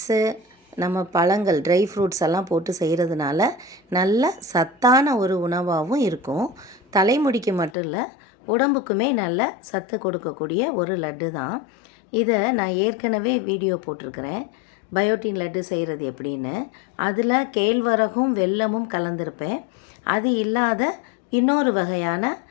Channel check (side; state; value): right; drops out; at 7.8 s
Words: நம்ம பழங்கள், ட்ரை ஃப்ரூட்ஸ் எல்லாம் போட்டு செய்கிறதுனால நல்ல சத்தான ஒரு உணவாகவும் இருக்கும். தலைமுடிக்கு மட்டும் இல்லை, உடம்புக்குமே நல்ல சத்து கொடுக்கக்கூடிய ஒரு லட்டு தான். இதை நான் ஏற்கனவே வீடியோ போட்டிருக்கிறேன், பயோட்டின் லட்டு செய்கிறது எப்படின்னு. அதில் கேழ்வரகும் வெல்லமும் கலந்துருப்பேன். அது இல்லாத இன்னொரு வகையான